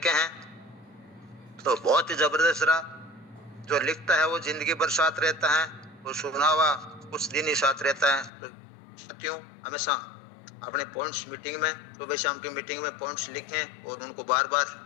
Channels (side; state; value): right; drops out; at 8.3 s